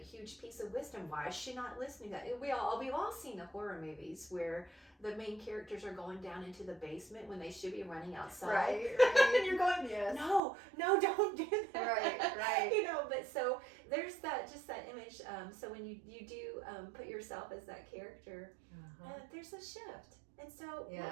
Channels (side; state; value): left; drops out; at 10.4 s